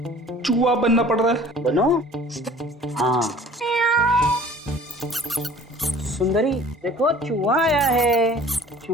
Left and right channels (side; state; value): both; normal; correlation 0.49